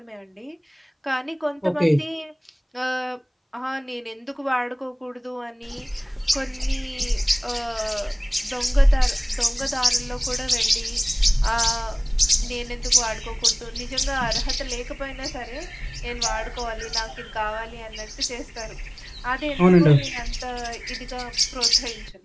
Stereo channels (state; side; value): identical; both; correlation 1.00